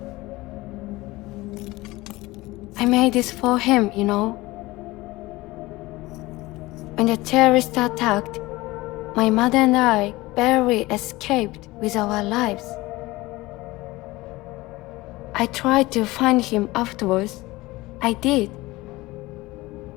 I made this for him, you know. When the terrorists attacked, my mother and I barely escaped with our lives. I tried to find him afterwards. I did.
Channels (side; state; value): right; quieter; 20.1 dB